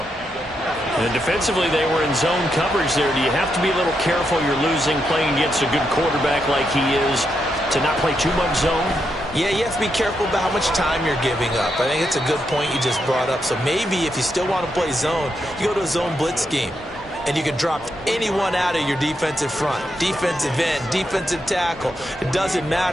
And defensively, they were in zone coverage there. Do you have to be a little careful? You're losing, playing against a good quarterback like he is, to not play too much zone? Yeah, you have to be careful about how much time you're giving up. I think it's a good point you just brought up. So maybe if you still want to play zone, you go to a zone blitz scheme. And you can drop anyone out of your defensive front. Defensive end, defensive tackle. It doesn't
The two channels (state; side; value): normal; both; correlation 0.82